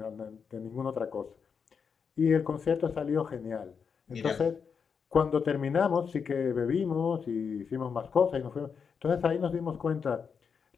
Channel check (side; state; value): right; quieter; 6.2 dB